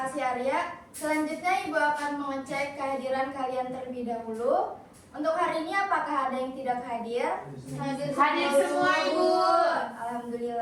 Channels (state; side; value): identical; both; correlation 1.00